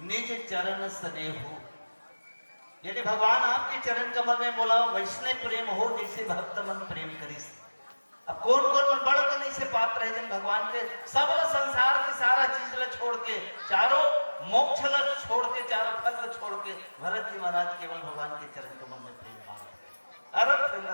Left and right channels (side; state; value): both; inverted; correlation -1.00